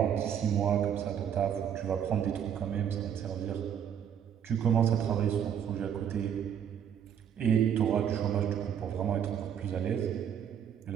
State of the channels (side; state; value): left; quieter; 8.8 dB